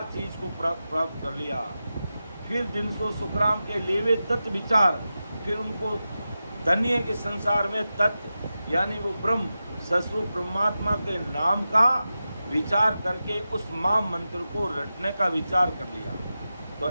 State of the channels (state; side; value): inverted; both; correlation -0.92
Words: चीज को प्राप्त कर लिया। फिर दिन सो सुखराम के लेवे तत्व विचार। फिर उनको धन्य के संसार में तत्व यानी वो ब्रह्म सस्वरूप परमात्मा के नाम का विचार करके उस महान मंत्र को रटने का विचार कर लिया। तो